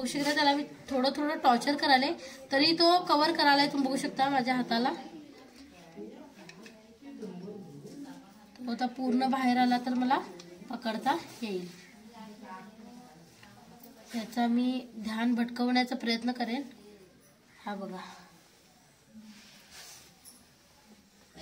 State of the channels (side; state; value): both; identical; correlation 1.00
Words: शकता त्याला मी थोडं थोडं टॉर्चर करायला तरी तो कव्हर करायला. तुम्ही बघू शकता माझ्या हाताला तो आता पूर्ण बाहेर आला तर मला पकडता येईल. त्याचा मी ध्यान भटकवण्याचा प्रयत्न करेन. हा बघा